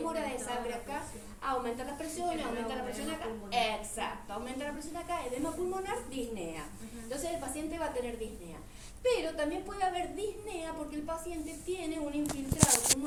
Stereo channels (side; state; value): both; identical; correlation 1.00